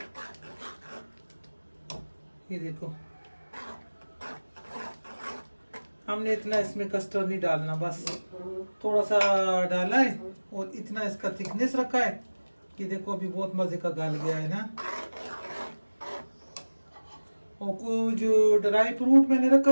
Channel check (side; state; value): both; inverted; correlation -1.00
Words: ये देखो हमने इतना इसमें कस्टर्ड नहीं डालना, बस थोड़ा सा डाला है और इतना इसका थिकनेस रखा है कि देखो अभी बहुत मज़े का गल गया है ना। और कुछ ड्राई फ्रूट मैंने रखा